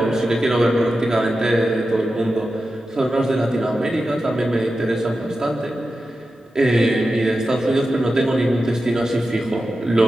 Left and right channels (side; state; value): both; normal; correlation 0.92